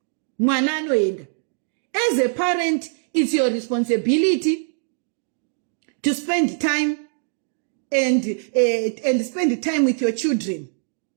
Mwana anoenda. As a parent, it's your responsibility to spend time and spend time with your children.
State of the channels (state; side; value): silent; left; digital silence